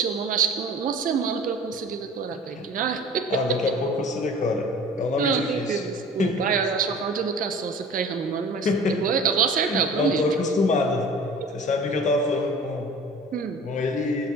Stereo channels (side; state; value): both; normal; correlation 0.42